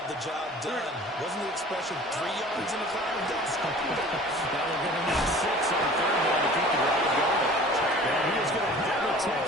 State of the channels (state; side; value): normal; both; correlation 0.45